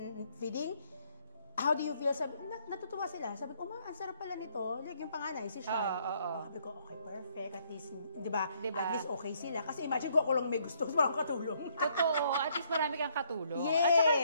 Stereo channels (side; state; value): both; inverted; correlation -0.69